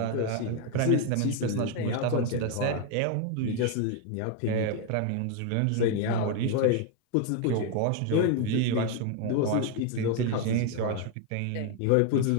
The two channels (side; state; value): both; different; correlation 0.01